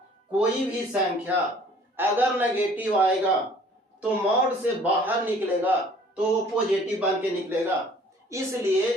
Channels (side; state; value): both; normal; correlation 0.54